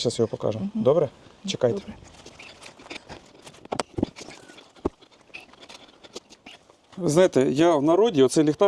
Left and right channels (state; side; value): identical; both; correlation 1.00